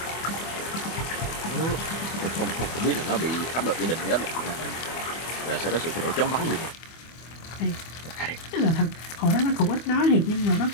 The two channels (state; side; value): late; right; 24 ms